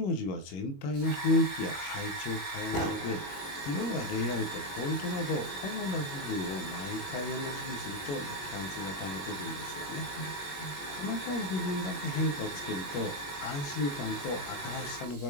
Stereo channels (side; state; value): right; late; 21 ms